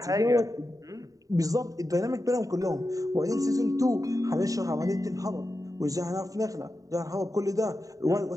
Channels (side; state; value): left; late; 0.16 ms